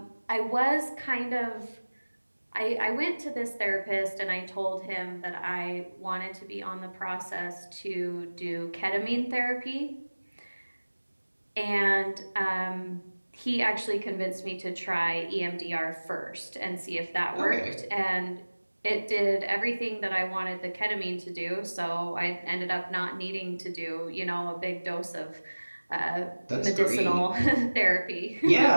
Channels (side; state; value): both; inverted; correlation -1.00